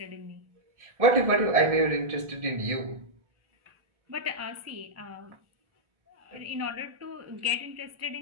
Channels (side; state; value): left; late; 1.4 ms